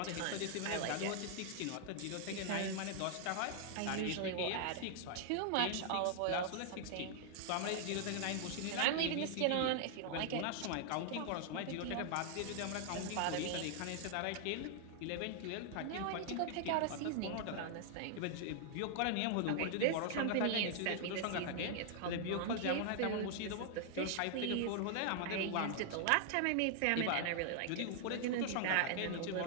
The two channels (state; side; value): different; both; correlation 0.00